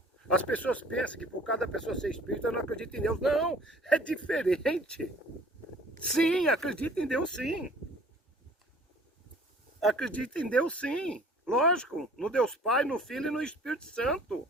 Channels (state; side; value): normal; both; correlation 0.52